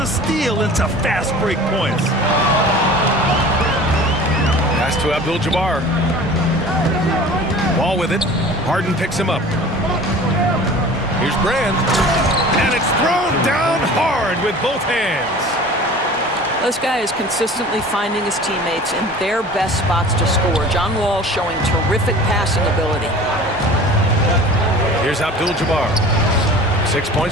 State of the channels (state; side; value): normal; both; correlation 0.42